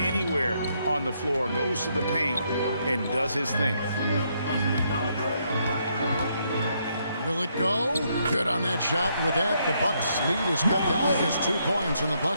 on the floor, goes to the paint and does his thing. Will it go? Good on that shot. With that, the Bucks lead is cut down to just 2 points in the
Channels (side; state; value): both; inverted; correlation -0.75